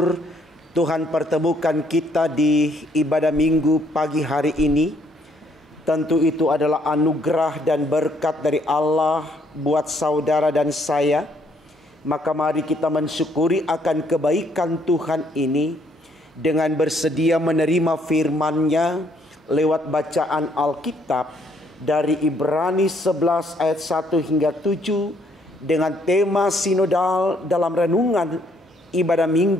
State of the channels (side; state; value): both; normal; correlation 0.68